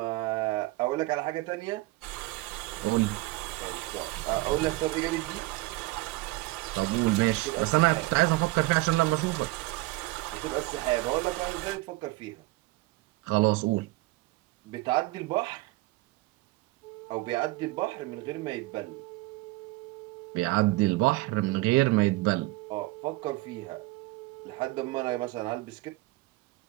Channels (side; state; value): left; quieter; 20.3 dB